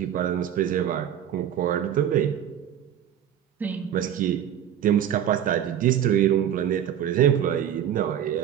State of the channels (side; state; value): left; quieter; 10.1 dB